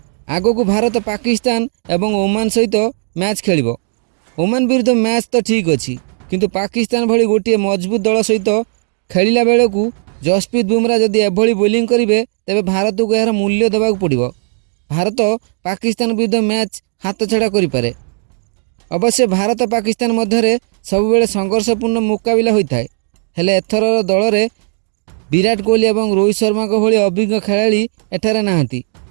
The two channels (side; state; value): left; silent; 69 dB below the other